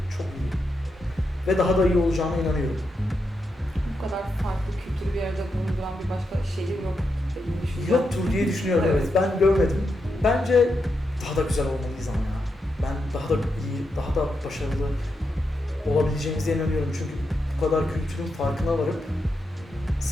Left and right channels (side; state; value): both; normal; correlation 0.85